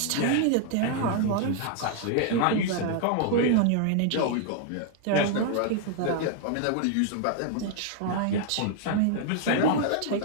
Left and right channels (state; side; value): different; both; correlation 0.00